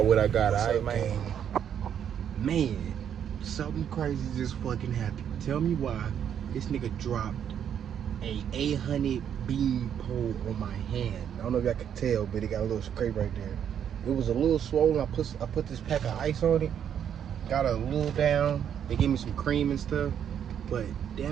what I got. All right, man. Man, something crazy just fucking happened. Tell me why this nigga dropped a 800 beam pole on my hand. I don't know if y'all can tell, but it got a little scrape right there. It was a little swollen. I put this pack of ice on it, got it a little down. They gave me some cream and stuff, but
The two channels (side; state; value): left; quieter; 8.9 dB